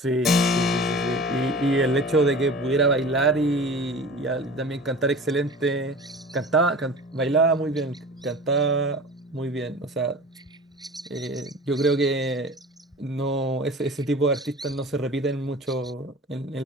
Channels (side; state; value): both; normal; correlation 0.38